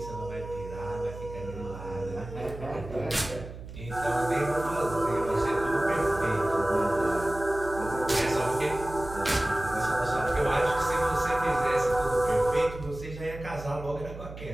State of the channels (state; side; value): noise; right; hum, 12 dB below the sound